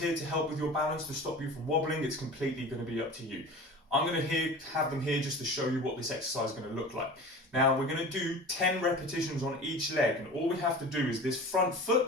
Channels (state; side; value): normal; both; correlation 0.37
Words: to help with your balance, to stop you from wobbling. It's completely going to be up to you. I'm going to have them here just to show you what this exercise is going to look like. Now we're going to do 10 repetitions on each leg, and all we have to do is this front